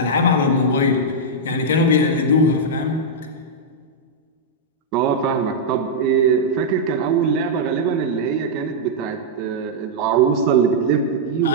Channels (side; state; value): both; normal; correlation -0.06